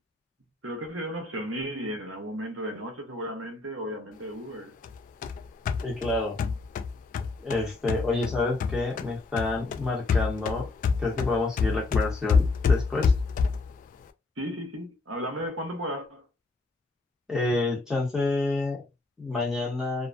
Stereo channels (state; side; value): quieter; right; 3.3 dB